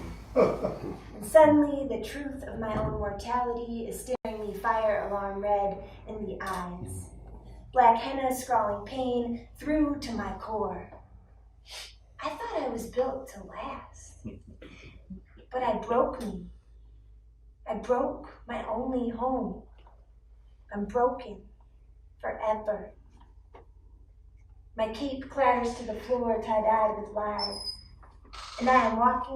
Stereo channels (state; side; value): identical; both; correlation 1.00